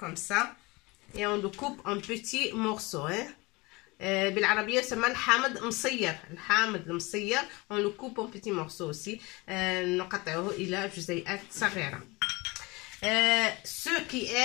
ça. Et on le coupe en petits morceaux. بالعربية يسمى الحامض مصير. الحامض المصير on le coupe en petits morceaux aussi. نقطعه إلى جزيئات صغيرة. Ceux qui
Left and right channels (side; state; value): right; quieter; 24.2 dB